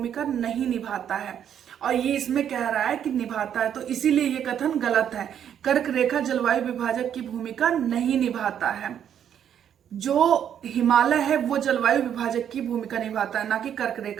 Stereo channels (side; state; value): left; quieter; 9.3 dB